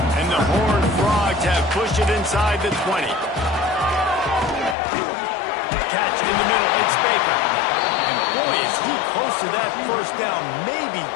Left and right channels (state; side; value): drops out; right; at 4.8 s